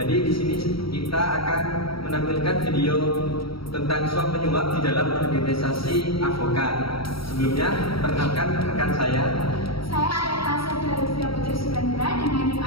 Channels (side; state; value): right; late; 0.75 ms